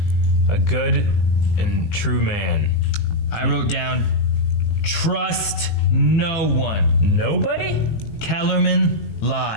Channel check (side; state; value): right; late; 19 ms